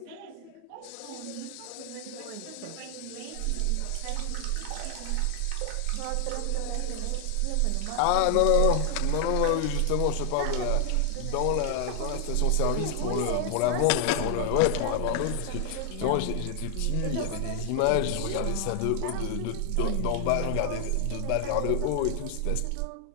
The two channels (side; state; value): both; different; correlation 0.00